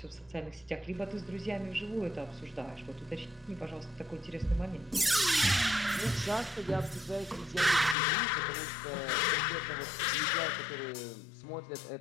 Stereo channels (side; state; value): right; drops out; at 8.0 s